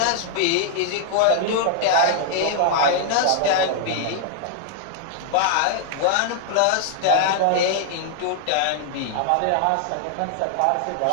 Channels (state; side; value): different; both; correlation -0.01